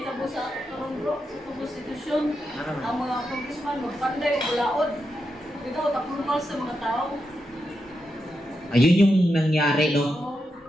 tabo sa karong bro, sa konstitusyon, ang mga congressman magpanday ulaod. Ito tapulmal sa mga tao. Ayun yung nangyari, no?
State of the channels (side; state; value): both; normal; correlation 0.86